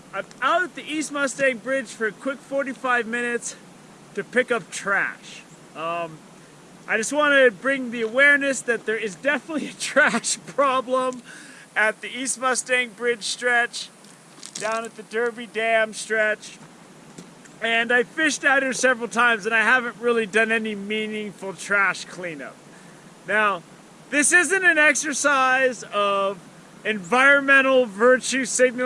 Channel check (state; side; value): identical; both; correlation 1.00